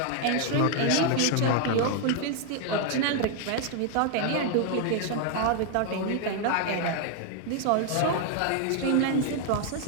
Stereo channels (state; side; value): different; both; correlation 0.00